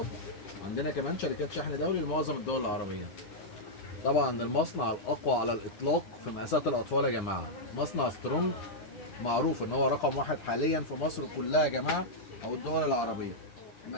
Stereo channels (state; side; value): late; right; 9.8 ms